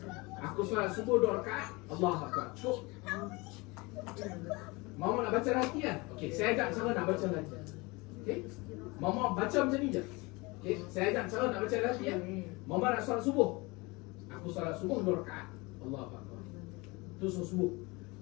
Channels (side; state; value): right; quieter; 25.1 dB